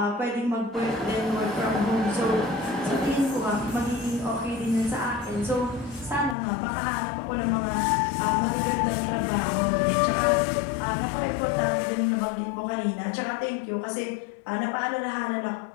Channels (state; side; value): drops out; right; at 6.4 s